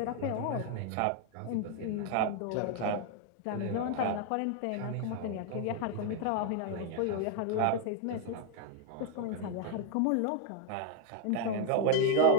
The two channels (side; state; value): both; different; correlation 0.00